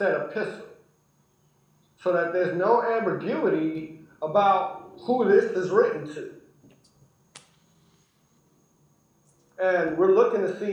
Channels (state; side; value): identical; both; correlation 1.00